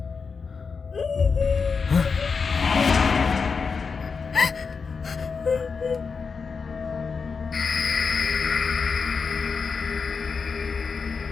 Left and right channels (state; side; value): quieter; right; 5.2 dB